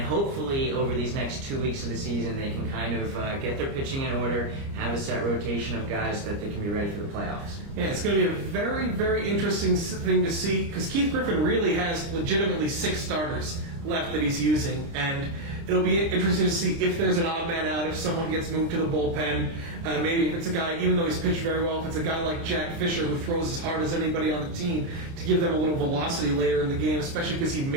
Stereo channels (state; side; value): late; left; 29 ms